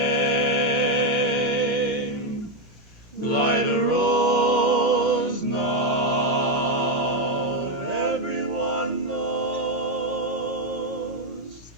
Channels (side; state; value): both; normal; correlation 0.05